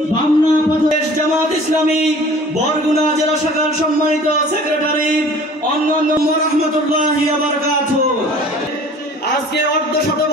বামনা প্রদেশ জামাত ইসলামী বরগুনা জেলা শাখার সম্মানিত সেক্রেটারি অন্যান্য রাহমাতুল্লাহি ওয়া বারাকাতুহু। আজকে অর্ধশত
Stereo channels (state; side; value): normal; both; correlation 0.47